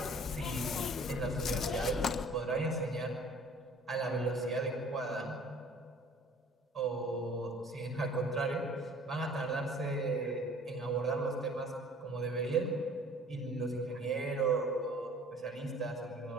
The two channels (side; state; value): both; normal; correlation 0.51